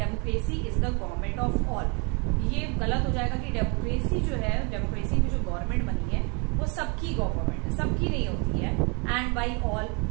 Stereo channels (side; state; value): left; quieter; 33.1 dB